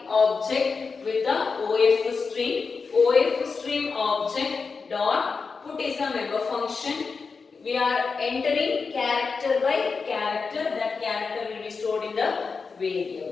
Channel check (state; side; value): quieter; right; 4.8 dB